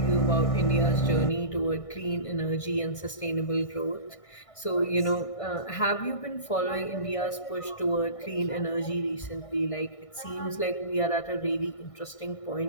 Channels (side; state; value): right; late; 1.6 ms